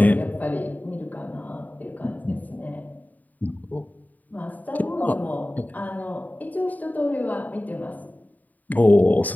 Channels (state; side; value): late; right; 0.080 ms